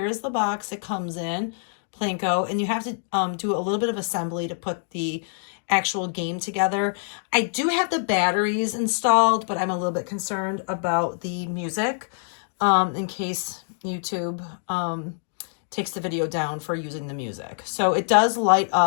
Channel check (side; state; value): right; silent; digital silence